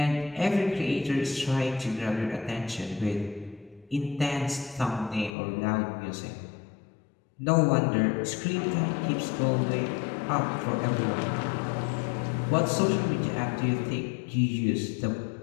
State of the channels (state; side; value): drops out; right; at 5.3 s